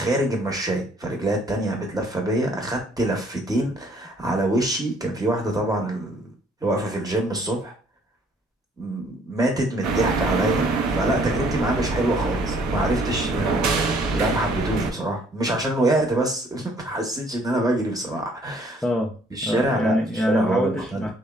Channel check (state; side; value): normal; both; correlation 0.61